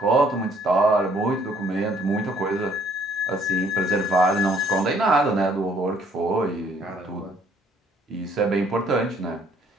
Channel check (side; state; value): both; normal; correlation 0.63